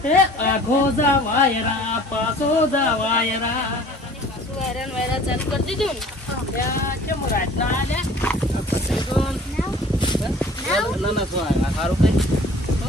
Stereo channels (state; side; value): normal; both; correlation 0.48